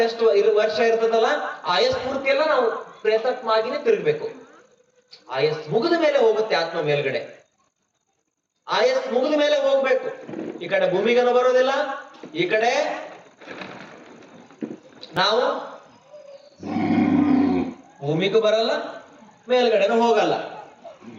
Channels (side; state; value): both; identical; correlation 1.00